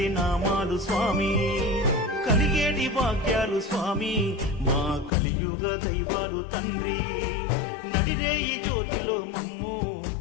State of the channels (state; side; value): drops out; right; at 5.1 s